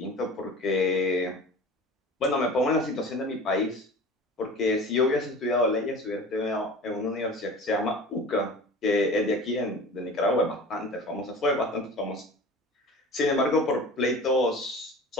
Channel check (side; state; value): both; normal; correlation 0.39